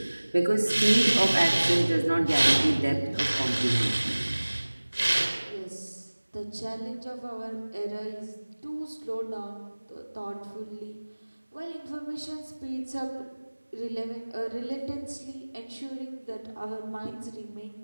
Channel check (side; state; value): both; inverted; correlation -1.00